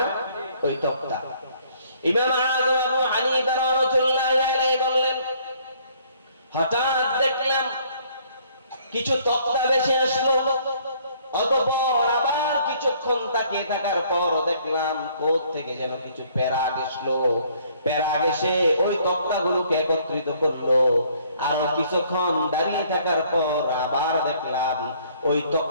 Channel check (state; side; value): inverted; both; correlation -0.62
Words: ওই তক্তা। ইমাম আযম আবু হানিফা রাহমাতুল্লাহি আলাইহি বললেন, হঠাৎ দেখলাম কিছু তক্তা ভেসে আসলো। অতঃপর আবার কিছুক্ষণ তাকিয়ে থাকার পর দেখলাম কোথ থেকে যেন কিছু প্যারাগ আসলো। প্যারাগ এসে ওই তক্তাগুলোকে একত্রিত করলো। আর কিছুক্ষণ দাঁড়িয়ে থাকার পর আবার দেখলাম ওই